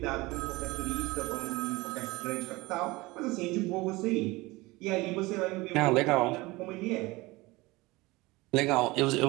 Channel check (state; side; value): quieter; left; 21.8 dB